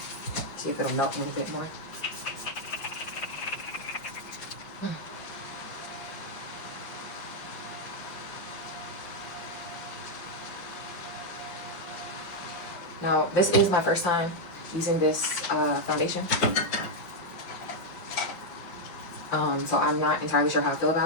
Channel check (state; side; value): late; right; 5.6 ms